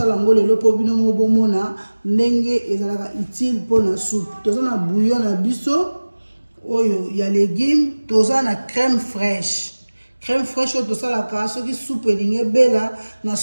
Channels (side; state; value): both; inverted; correlation -1.00